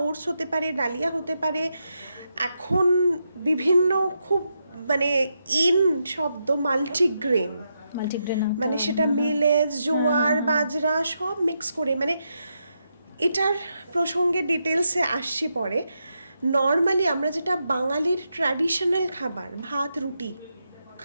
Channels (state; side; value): inverted; both; correlation -0.84